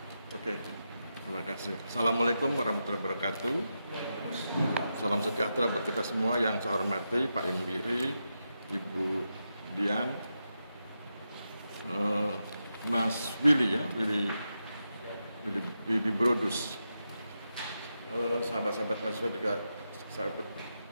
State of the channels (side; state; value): both; inverted; correlation -0.87